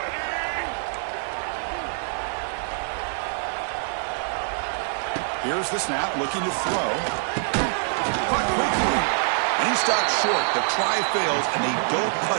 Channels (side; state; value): left; silent; digital silence